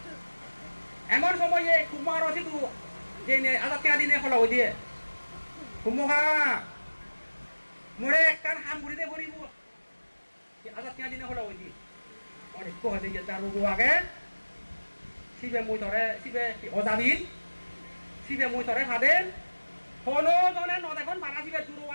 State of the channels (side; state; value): both; inverted; correlation -1.00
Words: এমন সময়ে কুমার আছে তো যে আজাদ কেনা দিনে ফলা দিয়ে কুমহা মোরে একখান হাম ঘুরিতে ভরিব আজাদ কেনা দিনে ফলা দিয়ে অনেক কহতে যে তার রোগ আগে সিবে মই ধরে সিবে অজাবিন সিবে মই ধরে ভাদেন হলো জনে নদেখন মারা সিবে